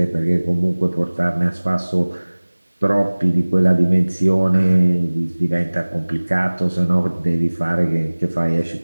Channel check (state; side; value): inverted; both; correlation -1.00